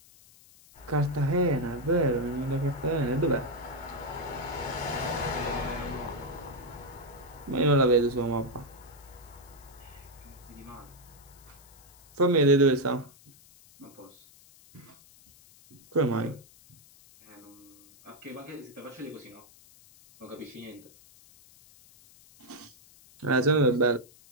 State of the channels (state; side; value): noise; left; hiss, 25 dB below the sound